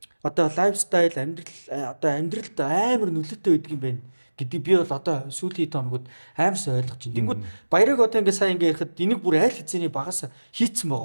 одоо лайфстайл амьдралд амар нөлөөтэй байдаг юм байна гэдэг би бол одоо сүүлийн хоногуд аимсаа ойлгож байна. Тэнгүүд баярыг одоо ингээ сая ингээ ярихад энийг бүр айл хэзээний багасаа хийцэн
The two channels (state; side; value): inverted; both; correlation -1.00